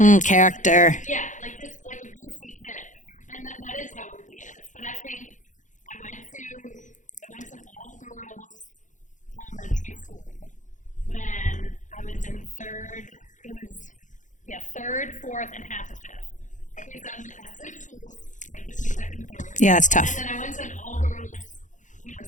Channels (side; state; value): right; late; 0.36 ms